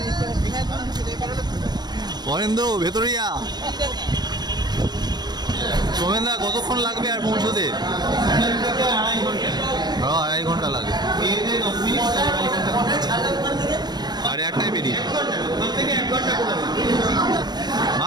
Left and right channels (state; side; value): late; left; 0.20 ms